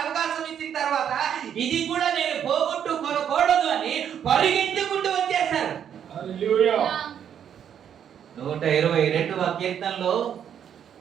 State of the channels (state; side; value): quieter; left; 8.9 dB